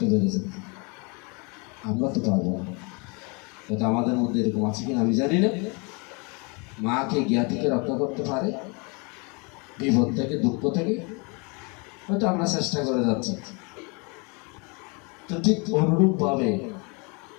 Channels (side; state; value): right; quieter; 31.5 dB